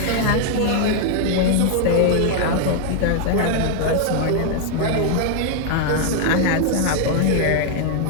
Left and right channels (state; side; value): different; both; correlation -0.01